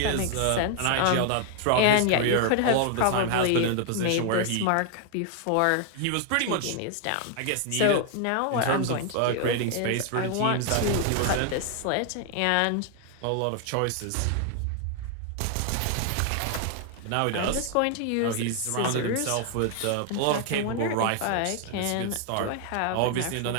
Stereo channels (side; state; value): both; different; correlation 0.00